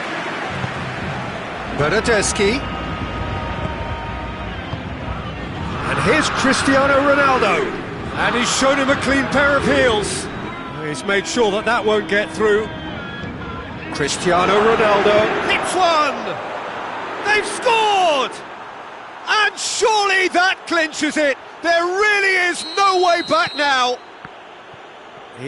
Bernardeschi. And here's Cristiano Ronaldo. And he's shown him a clean pair of heels. He's made sure that that won't get through. Cristiano Ronaldo hits one! They've scored! And surely that clinches it. There really is no way back now.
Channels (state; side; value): identical; both; correlation 1.00